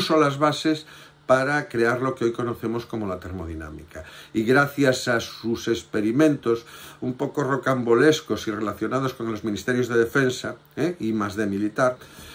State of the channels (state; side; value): identical; both; correlation 1.00